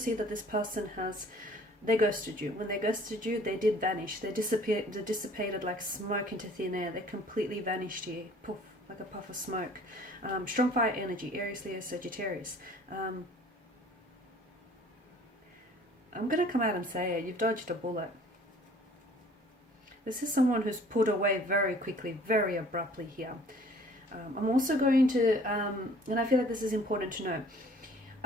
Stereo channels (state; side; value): normal; both; correlation 0.53